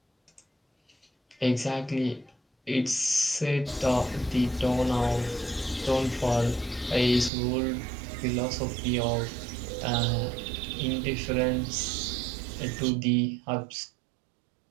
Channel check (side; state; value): left; drops out; at 7.3 s